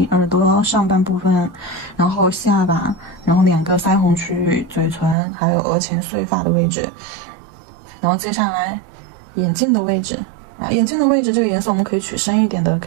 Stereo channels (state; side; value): drops out; left; at 5.2 s